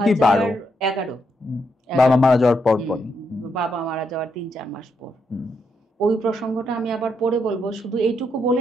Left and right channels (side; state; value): both; normal; correlation 0.79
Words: কি 12? 11। বাবা মারা যাওয়ার পর, বাবা মারা যাওয়ার 3-4 মাস পর। ওই প্রসঙ্গটা আমি আবার পরে বলবো, শুধু এইটুকু